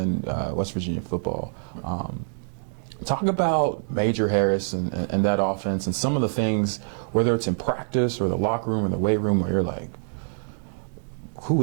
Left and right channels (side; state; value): left; silent; digital silence